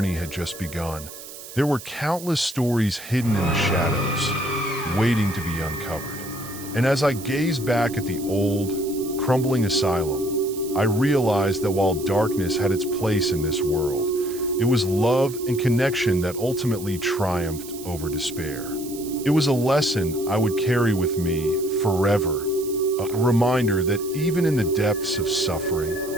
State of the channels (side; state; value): right; noise; hiss, 14 dB below the sound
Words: had just begun. There were countless stories hidden in the shadows, waiting to be uncovered. And as I gazed back at the old, crumbling asylum, I realized that while darkness had its place in this world, it was love and connection that ultimately triumphed over despair. It was a lesson I would carry with me forever, a reminder that even in the depths of suffering,